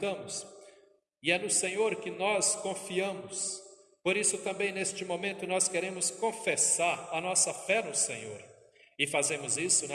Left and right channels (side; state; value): both; identical; correlation 1.00